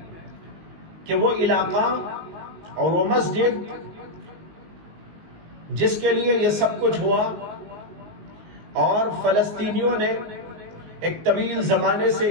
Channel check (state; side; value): late; left; 19 ms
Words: کہ وہ علاقہ اور وہ مسجد جس کے لیے یہ سب کچھ ہوا اور فلسطینیوں نے ایک طویل زمانے سے